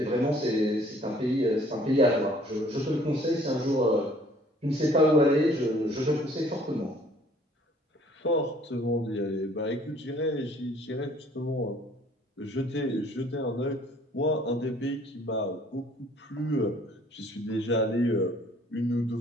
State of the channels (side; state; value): both; normal; correlation 0.58